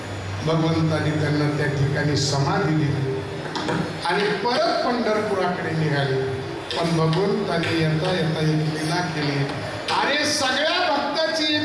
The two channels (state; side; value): identical; both; correlation 1.00